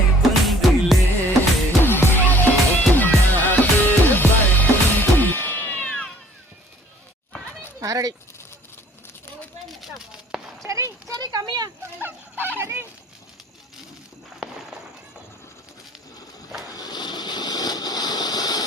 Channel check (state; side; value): normal; both; correlation 0.56